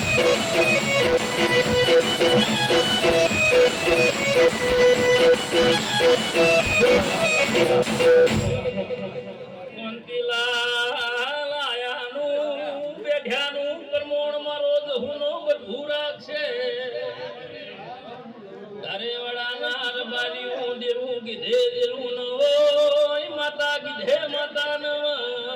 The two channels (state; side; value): identical; both; correlation 1.00